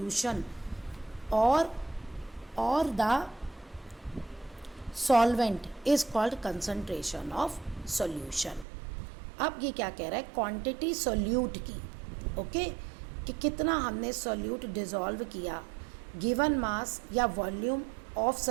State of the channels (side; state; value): left; drops out; at 8.7 s